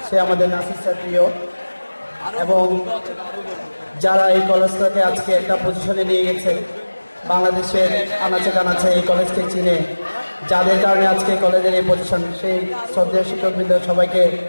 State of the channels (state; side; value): inverted; both; correlation -1.00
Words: সে আমাদের নাসির স্যার প্রিয়, এবং যারা এই কলেজটাকে আজকে একটা পজিশনে নিয়ে গেছে, বাংলাদেশের আনাচে কানাচে এই কলেজকে চিনে যাদের কারণে আজকে কলেজের এই পজিশন, সেই শ্রদ্ধেয় শিক্ষকবৃন্দ সবাইকে